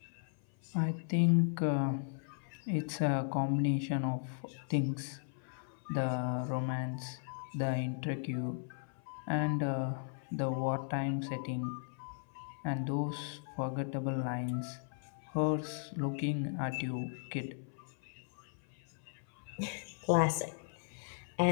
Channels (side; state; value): right; silent; 53 dB below the other